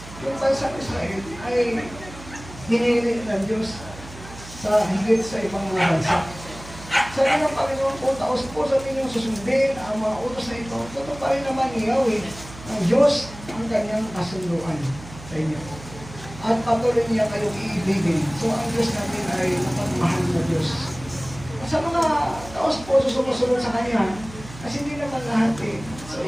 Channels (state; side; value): noise; right; hum, 16 dB below the sound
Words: yung bansang Israel ay hinili ng Diyos sa higit sa ibang mga bansa. Sabi ng Panginoon, kung taos po sa inyong susundin ang mga utos na ito, totoo pa rin naman ni Yahweh ng Diyos ang kanyang kasunduan sa inyo. At patuloy niya kayong iibigin. So ang Diyos natin ay napagmahal na Diyos. At sa mga taos po sumusunod sa Kanya, kasi hindi naman lahat eh. So